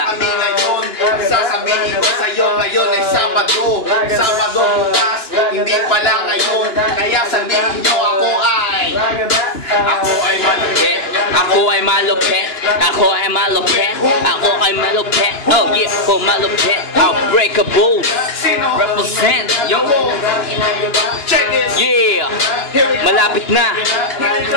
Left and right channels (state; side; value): late; right; 2.9 ms